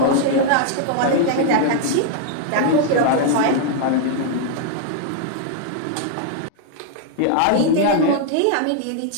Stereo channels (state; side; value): different; both; correlation 0.00